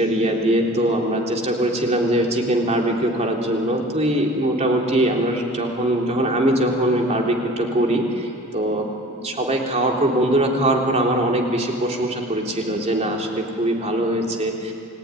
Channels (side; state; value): both; normal; correlation 0.43